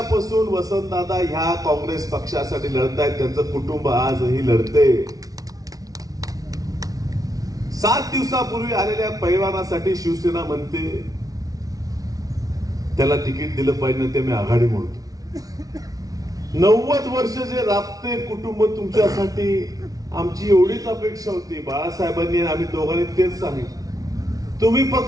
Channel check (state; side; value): late; left; 0.18 ms